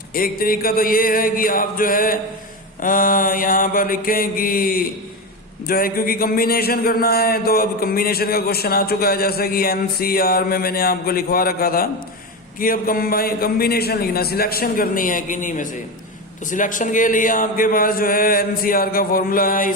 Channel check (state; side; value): normal; both; correlation 0.18